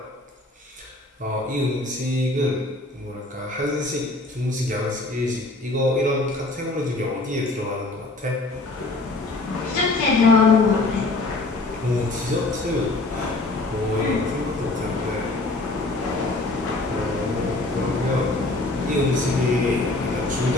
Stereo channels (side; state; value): right; quieter; 3.0 dB